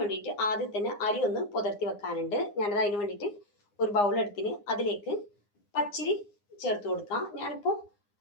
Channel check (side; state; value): right; late; 9.7 ms